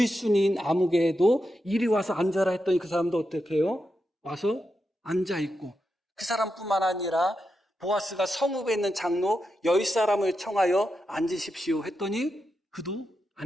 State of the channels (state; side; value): normal; both; correlation 0.87